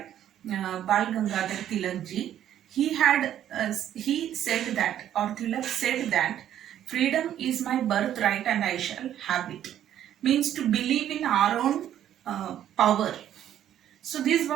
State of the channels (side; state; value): left; quieter; 11.0 dB